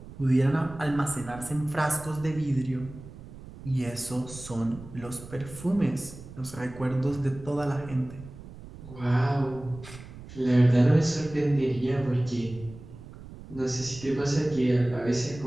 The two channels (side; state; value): right; noise; rumble, 16 dB below the sound